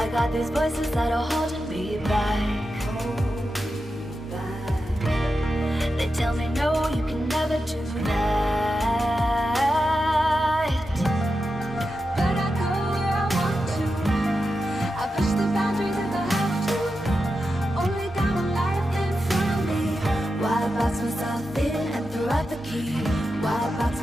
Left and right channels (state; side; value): normal; both; correlation 0.89